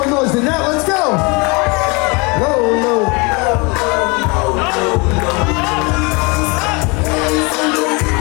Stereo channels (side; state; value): right; quieter; 28.7 dB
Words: noise than that. Let's go. Low, low.